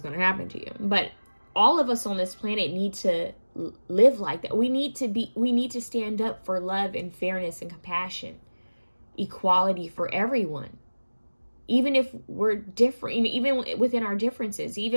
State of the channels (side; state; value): both; inverted; correlation -1.00